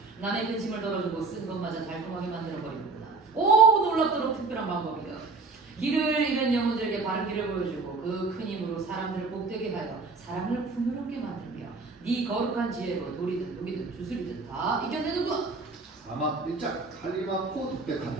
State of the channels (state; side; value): quieter; left; 4.0 dB